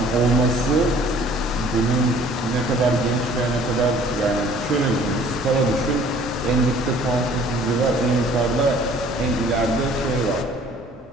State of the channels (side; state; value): both; normal; correlation 0.53